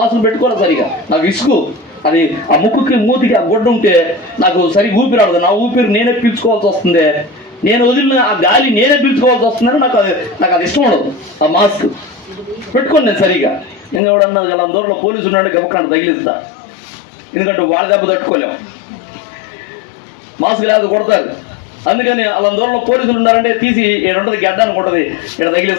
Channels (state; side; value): drops out; right; at 14.0 s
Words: పెట్టుకోవాలి సరిగా. నాకు ఇసుకు అది ఆ ముక్కుకి మూతికి ఆ గుడ్డ ఉంటే నాకు సరిగ్గా ఊపిరాడదు. నా ఊపిరి నేనే పీల్చుకోవాల్సి వస్తుంది, నేను వదిలిన ఆ గాలి నేనే పీల్చుకోవాల్సి వస్తుందని నాకు అది ఇష్టం ఉండదు ఆ మాస్క్. పెట్టుకోండి నేను సరిగా. ఇంకా ఎవడన్నా అలా దూరంలో పోలీసు ఉన్నాడు గబక్కన తగిలిస్తా, ఎందుకంటే వాళ్ళ దెబ్బ తట్టుకోలేము, మాస్క్ లేకపోతే కొడతారు. అందుకని అలా దూరంలో పోలీసులు ఉన్నారంటే తీసి ఉంటుంది గడ్డానికి ఉంటుంది, ఇక్కడ